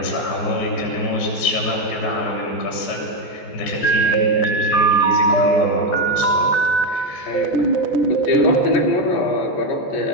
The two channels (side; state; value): right; late; 14 ms